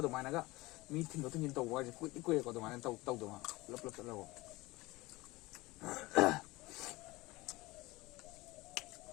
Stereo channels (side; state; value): right; quieter; 21.1 dB